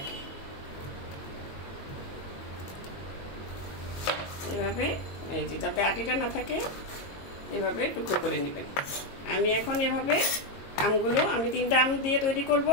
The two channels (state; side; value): late; right; 22 ms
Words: এভাবে এই যে যাতে আটিটা না থাকে এভাবে টুকরো করে নেবেন। আমি এখন এভাবে আমগুলো, আমি 3টা আম দিয়ে তৈরি করব,